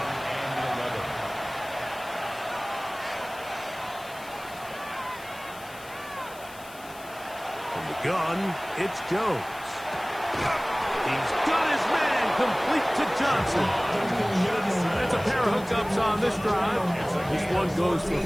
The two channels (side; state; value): left; noise; hiss, 19 dB below the sound